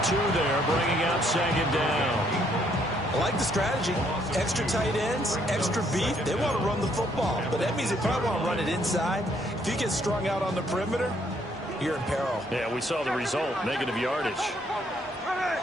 2 there, bringing up 2nd down. I like the strategy. Extra tight ends, extra beef. They want to run the football, but that means they probably want to run it inside. If you get strung out on the perimeter, you're in peril. Yeah, we saw the result, negative yardage.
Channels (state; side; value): normal; both; correlation 0.68